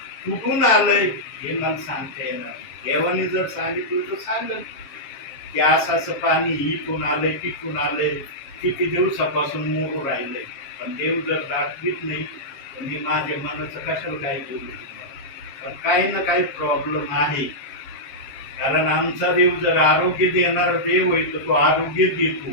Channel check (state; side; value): late; right; 7.4 ms